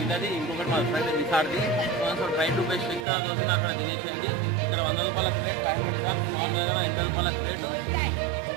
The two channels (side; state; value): left; drops out; at 3.1 s